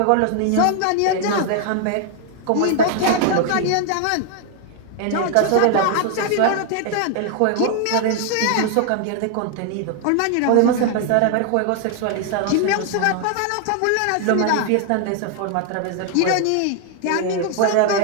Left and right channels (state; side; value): different; both; correlation 0.00